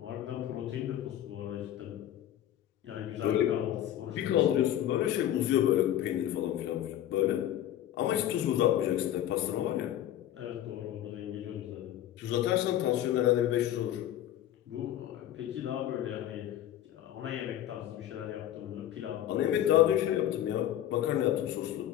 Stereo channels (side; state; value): right; quieter; 11.9 dB